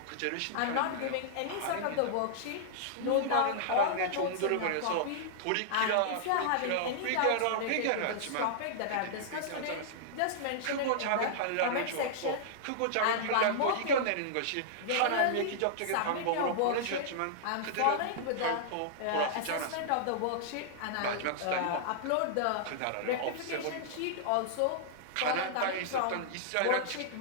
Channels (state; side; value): different; both; correlation -0.02